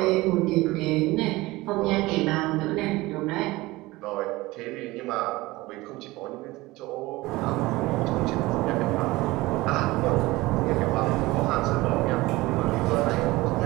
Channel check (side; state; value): left; quieter; 20.1 dB